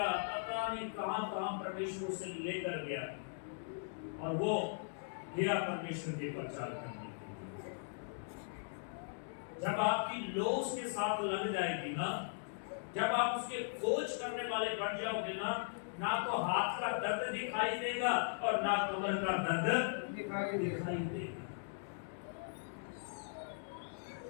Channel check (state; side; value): silent; right; digital silence